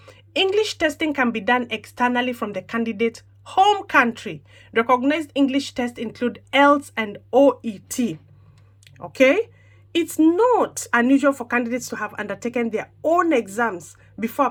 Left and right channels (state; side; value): identical; both; correlation 1.00